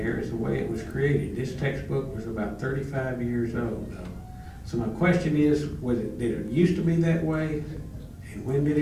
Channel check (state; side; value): identical; both; correlation 1.00